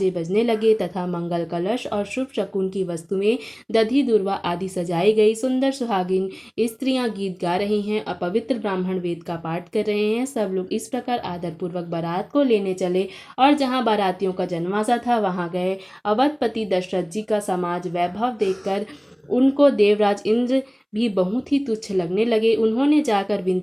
बजने लगे तथा मंगल कलश और शुभ शकुन की वस्तुएं दधि दुर्वा आदि सजाई गई। सुंदर सुहागिन स्त्रियां गीत गा रही हैं और पवित्र ब्राह्मण वेद का पाठ कर रहे हैं। सब लोग इस प्रकार आदरपूर्वक बारात को लेने चले और जहाँ बारातियों का जन्माशा था वहाँ गए। अवधपति दशरथ जी का समाज वैभव देखकर उनको देवराज इंद्र भी बहुत ही तुच्छ लगने लगे। उन्होंने जाकर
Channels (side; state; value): both; identical; correlation 1.00